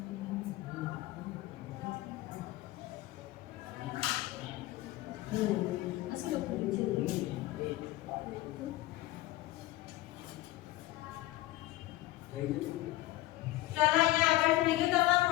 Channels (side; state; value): right; quieter; 17.3 dB